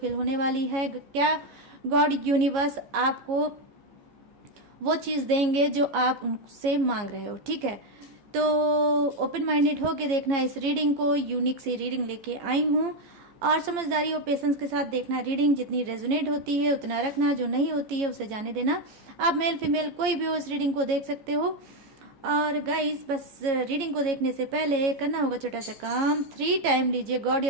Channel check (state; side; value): late; left; 15 ms